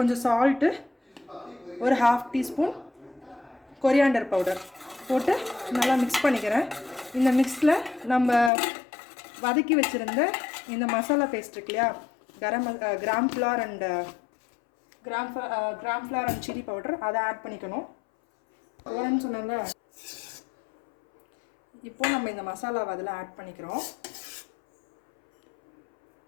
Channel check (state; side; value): drops out; right; at 8.5 s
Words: சால்ட்டு, ஒரு 1/2 டீஸ்பூன் கொரியாண்டர் பவுடர் போட்டு நல்லா மிக்ஸ் பண்ணிக்கிறேன். இந்த மிக்ஸில் நம்ம வதக்கி வச்சுருந்த இந்த மசாலா பேஸ்ட் இருக்கு இல்லையா, gram flour and chilli powder, அதை ஆட் பண்ணிக்கணும். போகிறேன்னு சொன்னாங்க. இப்போ நம்ம இந்த மசாலாவை அதில் ஆட் பண்ணிக்கிறோம்.